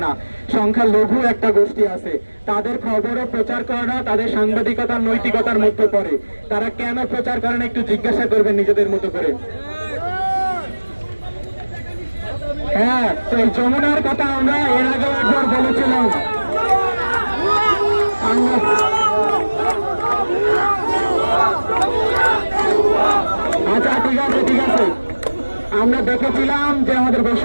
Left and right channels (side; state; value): both; inverted; correlation -1.00